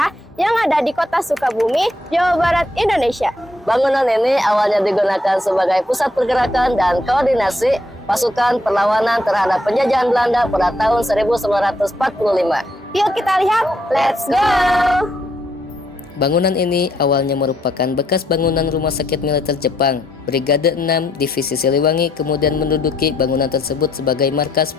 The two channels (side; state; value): both; normal; correlation 0.73